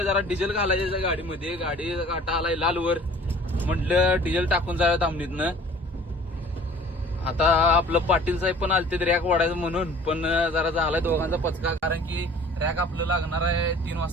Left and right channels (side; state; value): both; normal; correlation 0.48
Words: जरा डिझेल घालायचं गाडीमध्ये. गाडी काटा आलाय लालवर, म्हटलं डिझेल टाकून जाऊया दामणीतनं. आता आपलं पाटील साहेब पण आलते रॅक वाढायचं म्हणून, पण जरा झालाय दोघांचा पचका, कारण की रॅक आपलं लागणार आहे 3